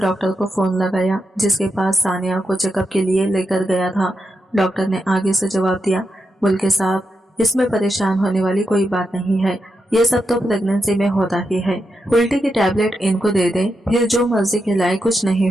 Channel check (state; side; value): normal; both; correlation 0.86